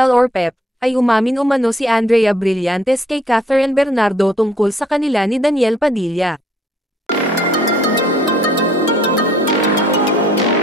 or PEP, ay umamin umano si Andrea Brillantes kay Catherine Bernardo tungkol sa kanila ni Daniel Padilla.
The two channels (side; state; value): both; normal; correlation 0.62